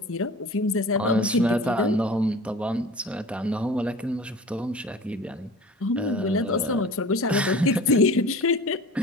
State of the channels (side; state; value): both; normal; correlation 0.39